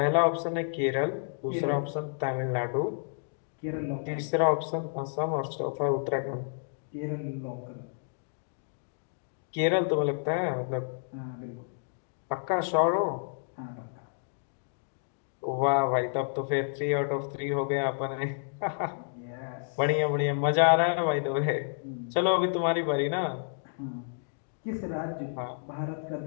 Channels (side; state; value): right; silent; digital silence